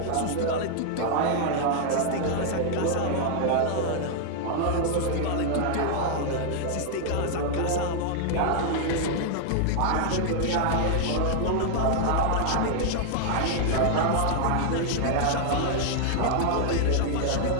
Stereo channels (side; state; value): both; different; correlation 0.00